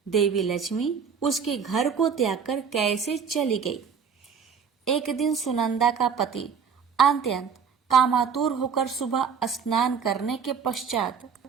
देवी लक्ष्मी उसके घर को त्याग कर कैसे चली गई। एक दिन सुनंदा का पति अत्यंत कामातुर होकर सुबह स्नान करने के पश्चात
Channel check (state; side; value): quieter; left; 6.6 dB